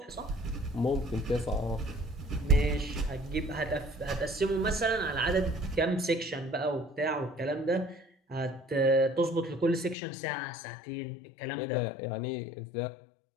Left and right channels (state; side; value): drops out; right; at 10.0 s